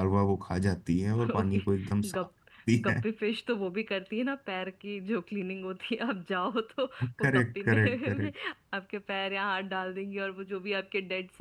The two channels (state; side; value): identical; both; correlation 1.00